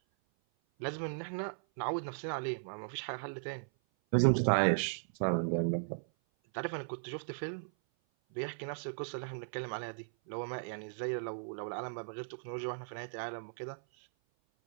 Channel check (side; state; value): left; silent; 53 dB below the other